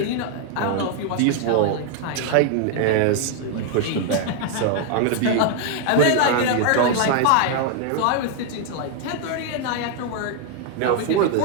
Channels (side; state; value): both; different; correlation 0.00